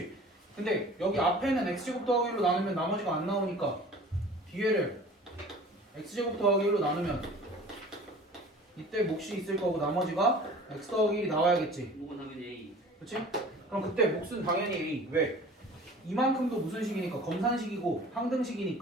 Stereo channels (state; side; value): normal; both; correlation 0.44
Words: 근데 여기 앞에는 x제곱 더하기 1로 나누면 나머지가 안 나오니까 뒤에를 x제곱 더하기 1로 나누면 이때 몫이 있을 거고 나머지가 x 더하기 1이 나와야겠지. 이건 당연히 A. 그치? 그럼 그때 몫은 당연히 A. 왜? 이만큼도 무슨 식이니까 검산식이고